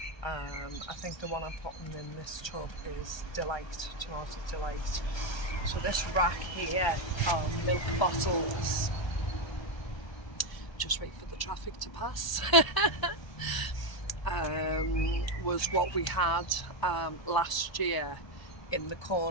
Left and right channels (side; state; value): right; late; 1.3 ms